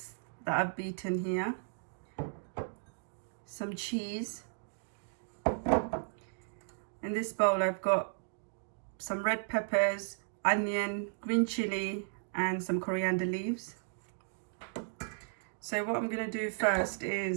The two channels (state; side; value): silent; left; digital silence